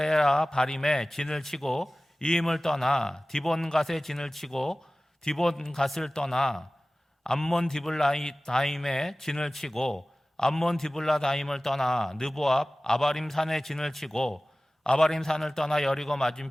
바림에 진을 치고 이임을 떠나 디본갓에 진을 치고 디본갓을 떠나 암몬 디블라다임에 진을 치고 암몬 디블라다임을 떠나 느보압 아바림 산에 진을 치고 아바림 산을 떠나 여리고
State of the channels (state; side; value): normal; both; correlation 0.98